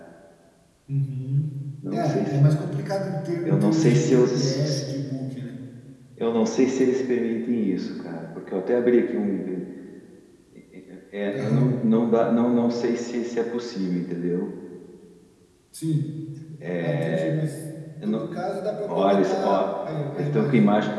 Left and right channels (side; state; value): both; identical; correlation 1.00